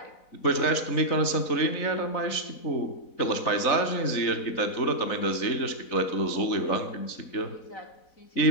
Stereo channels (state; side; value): late; right; 4.0 ms